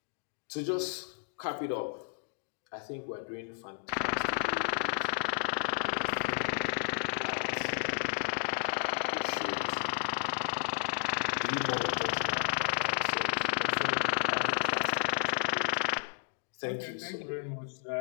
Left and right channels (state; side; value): silent; right; digital silence